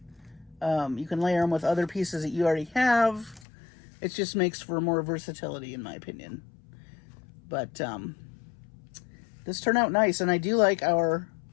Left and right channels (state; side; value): drops out; right; at 3.5 s